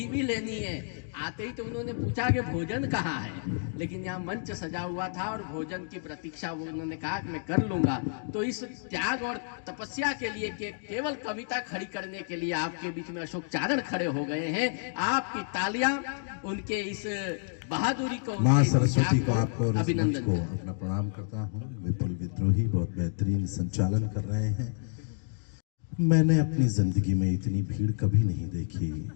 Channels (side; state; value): right; silent; digital silence